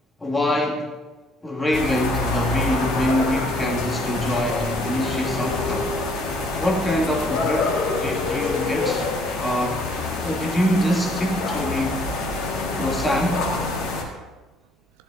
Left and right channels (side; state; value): both; normal; correlation 0.63